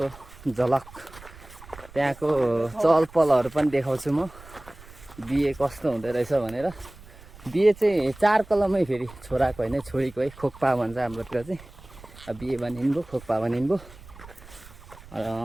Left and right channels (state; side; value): noise; right; rumble, 20 dB below the sound